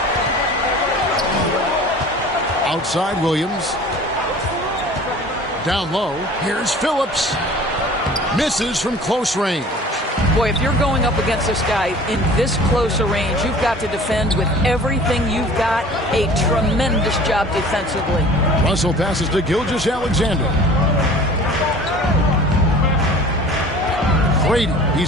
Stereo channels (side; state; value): both; normal; correlation 0.45